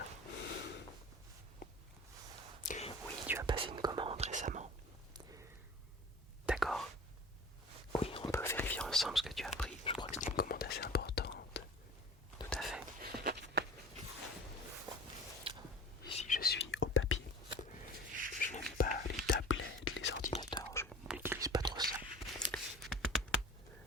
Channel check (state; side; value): normal; both; correlation 0.40